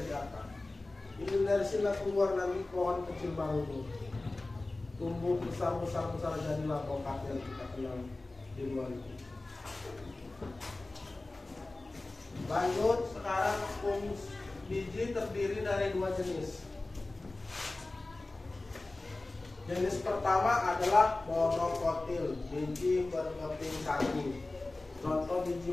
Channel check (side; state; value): right; quieter; 3.0 dB